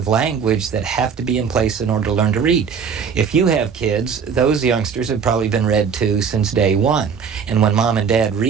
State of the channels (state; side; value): quieter; left; 6.5 dB